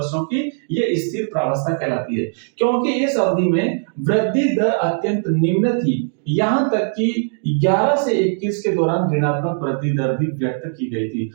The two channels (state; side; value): silent; left; digital silence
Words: की, ये स्थिर प्रावस्था कहलाती है, क्योंकि इस अवधि में वृद्धि दर अत्यंत निम्न थी, यहां तक कि 11 से 21 के दौरान ऋणात्मक वृद्धि दर भी व्यक्त की गई थी।